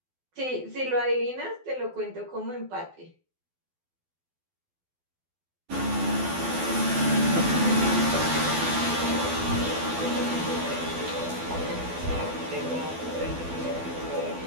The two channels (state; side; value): late; left; 12 ms